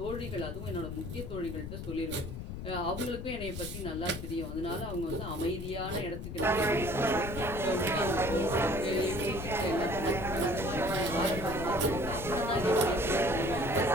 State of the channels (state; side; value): noise; left; rumble, 7 dB below the sound